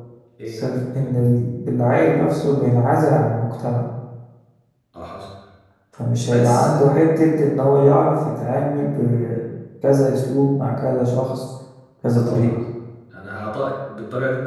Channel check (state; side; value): identical; both; correlation 1.00